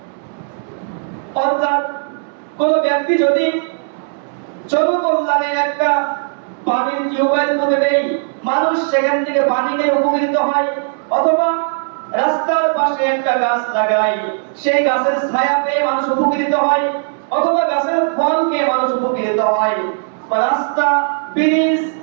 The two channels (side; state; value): left; silent; 68 dB below the other